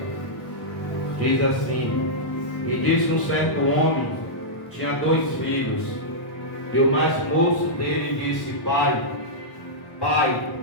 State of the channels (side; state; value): right; late; 1.0 ms